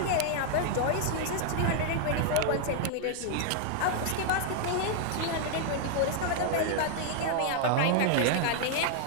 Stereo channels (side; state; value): both; different; correlation 0.00